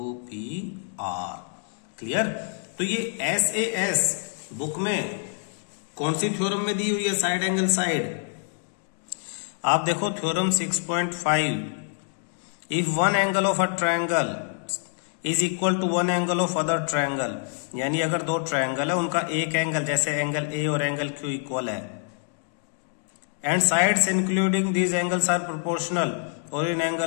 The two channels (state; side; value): silent; right; 60 dB below the other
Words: क्लियर? तो ये SAS बुक में कौन सी थ्योरम में दी हुई है साइड एंगल साइड? आप देखो theorem 6.5, if one angle of a triangle is equal to one angle of other triangle, यानी अगर दो ट्रायंगल है उनका एक एंगल जैसे एंगल A और एंगल Q इक्वल है, and sides including these angles are proportional, और इन